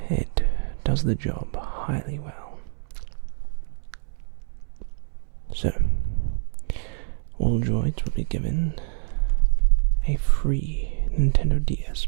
it does the job highly well. So, all droids will be given a free Nintendo DS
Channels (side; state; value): left; silent; 61 dB below the other